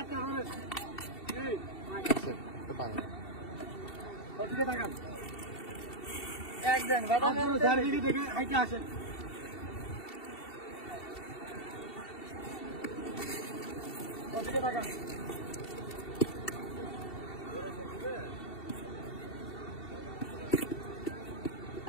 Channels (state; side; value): late; right; 2.7 ms